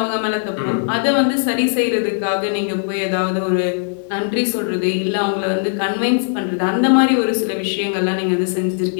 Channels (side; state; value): right; silent; 67 dB below the other